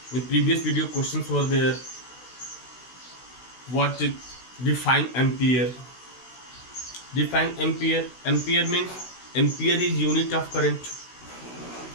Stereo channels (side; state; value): right; late; 16 ms